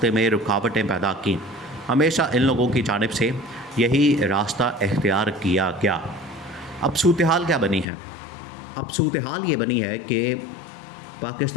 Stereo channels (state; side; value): drops out; right; at 7.9 s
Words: में रुकावटें पैदा की। हमेशा इन लोगों की जानिब से यही रास्ता इख्तियार किया गया। अब सूरत हाल क्या बनी है? अब सूरत हाल ये बनी है कि